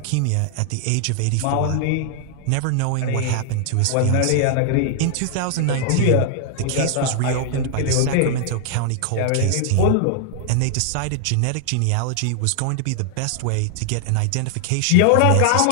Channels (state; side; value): different; both; correlation 0.00